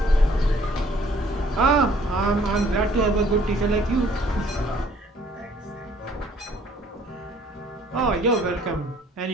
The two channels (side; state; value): both; normal; correlation 0.59